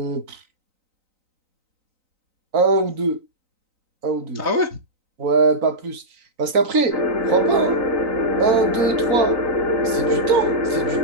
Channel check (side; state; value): left; late; 3.9 ms